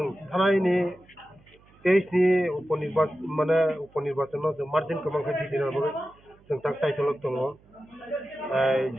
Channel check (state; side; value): noise; right; hum, 29 dB below the sound